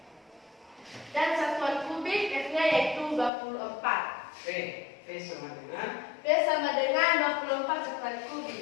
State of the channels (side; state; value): right; drops out; at 3.3 s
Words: Dan satuan kubik F-nya yaitu 24. V sama dengan V sama dengan 24 satuan